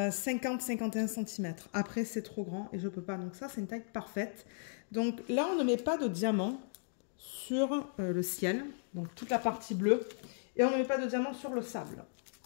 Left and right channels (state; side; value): silent; right; digital silence